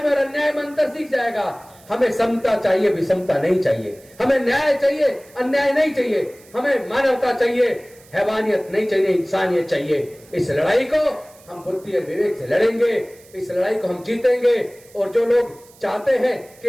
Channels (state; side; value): noise; right; hiss, 26 dB below the sound